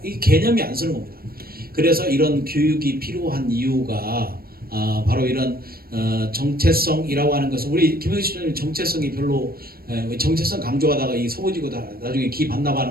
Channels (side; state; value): left; late; 0.44 ms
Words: 이 개념이 안 쓰는 겁니다. 그래서 이런 교육이 필요한 이유가 바로 이런 정체성이라고 하는 것은 우리 김영식 총장님 정체성이 별로 정체성 강조하다가 이 서부지구 나중에 기